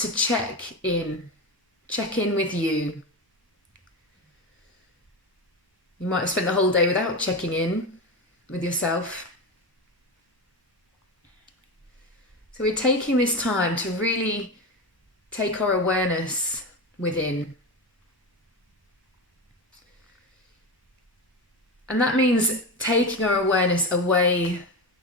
to check in with you. You might have spent the whole day without checking in with yourself. So we're taking this time to really take our awareness within. And that means taking our awareness away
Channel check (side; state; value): both; normal; correlation 0.20